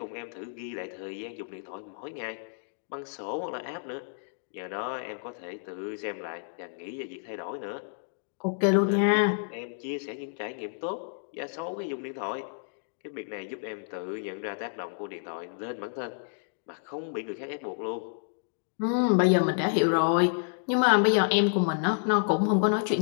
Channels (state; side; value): silent; right; digital silence